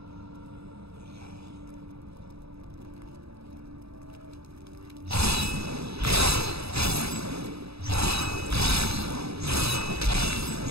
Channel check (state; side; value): late; left; 0.78 ms